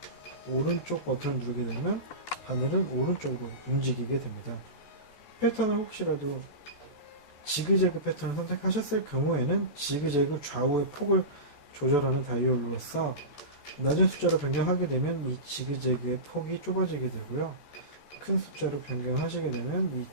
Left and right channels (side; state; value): right; late; 14 ms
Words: 오른쪽 버튼을 누르게 되면 바늘은 오른쪽으로 움직이게 됩니다. 패턴을 혹시라도 지그재그 패턴을 선택하셨을 경우에는 지그재그 좌우의 폭을 조절하는 다이얼로서 낮은 숫자로 변경하게 되면 이 지그재그의 폭이 좁아지게 되고요. 큰 숫자로 변경하시게 되면 이